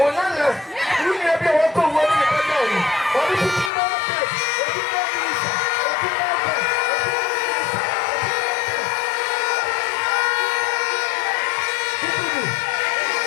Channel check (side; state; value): right; drops out; at 3.7 s